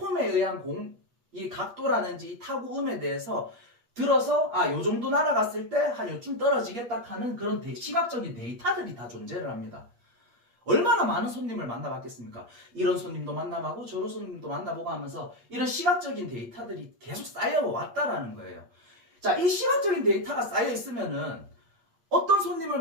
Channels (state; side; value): late; left; 8.4 ms